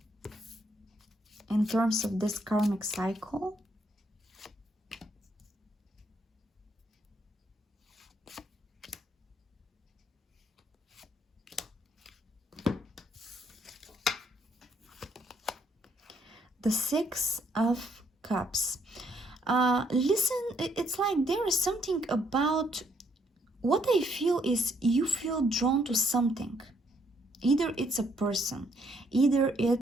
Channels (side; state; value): both; normal; correlation 0.71